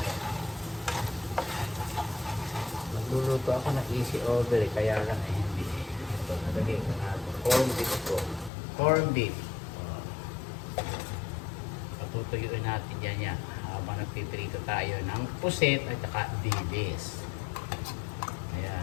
Nagluluto ako ng easy order, kaya lang ay hindi. Ito, nalagyan ko na ito. Corned beef po. Corned beef. Tutuyuin natin yan habang nagpiprito tayo ng puset at saka dilis.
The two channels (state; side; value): drops out; right; at 8.5 s